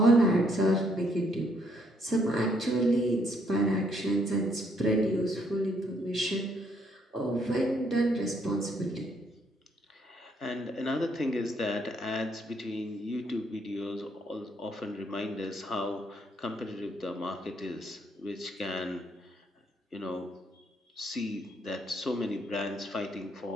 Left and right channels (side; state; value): both; normal; correlation 0.70